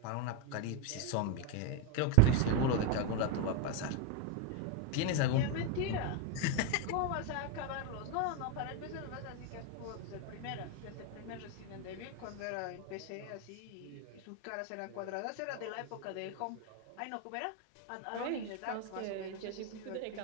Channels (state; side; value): different; both; correlation 0.02